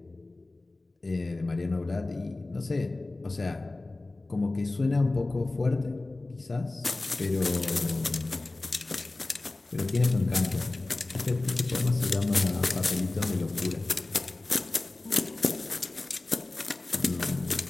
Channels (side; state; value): right; quieter; 3.1 dB